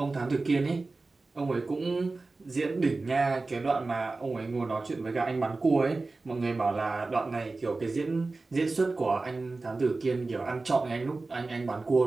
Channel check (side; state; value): left; quieter; 3.5 dB